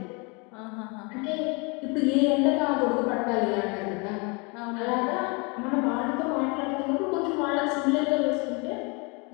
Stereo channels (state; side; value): quieter; right; 30.6 dB